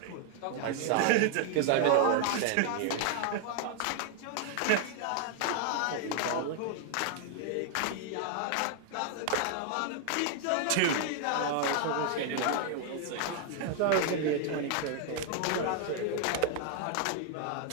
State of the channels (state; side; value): different; both; correlation 0.00